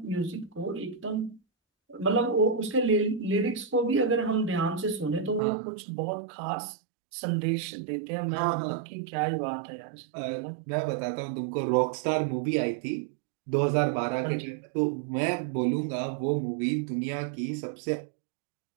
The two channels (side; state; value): left; drops out; at 5.4 s